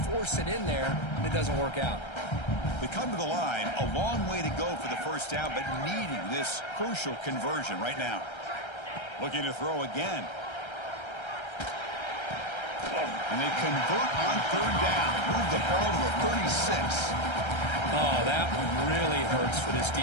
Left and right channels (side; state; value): right; late; 1.3 ms